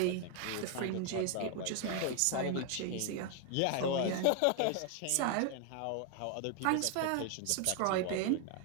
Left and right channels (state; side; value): different; both; correlation 0.00